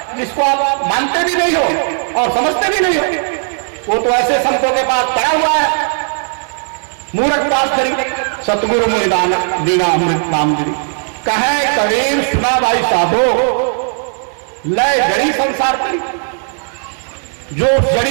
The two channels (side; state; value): left; silent; digital silence